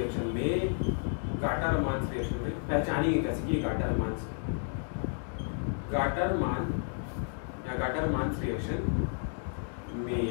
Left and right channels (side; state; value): right; silent; 57 dB below the other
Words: में पहचानिए कैसे कि गाटर-मान